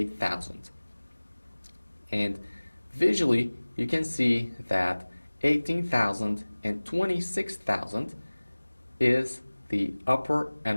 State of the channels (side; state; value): both; inverted; correlation -1.00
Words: And visually, you can see that 18,000 and 26,000 is the upper